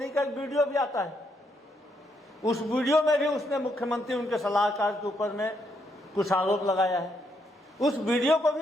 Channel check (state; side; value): normal; both; correlation 0.76